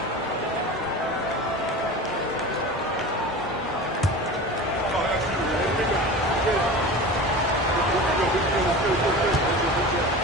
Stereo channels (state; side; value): normal; both; correlation 0.33